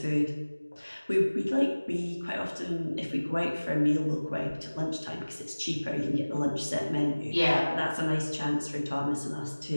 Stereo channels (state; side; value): inverted; both; correlation -1.00